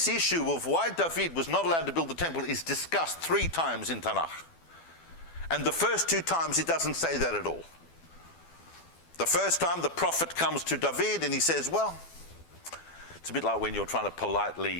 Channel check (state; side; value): late; right; 12 ms